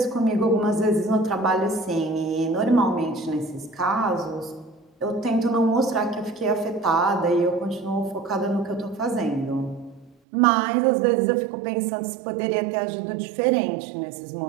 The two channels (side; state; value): left; drops out; at 10.2 s